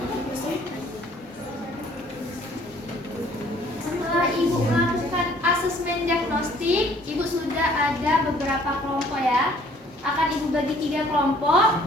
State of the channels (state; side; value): normal; both; correlation 0.58